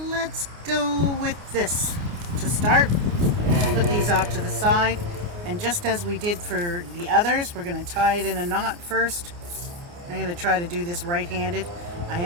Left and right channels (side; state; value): left; late; 29 ms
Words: go with this to start. Put these off to the side, and just as we did for the others, we're going to tie it in a knot first. I'm going to try to do this right-handed. I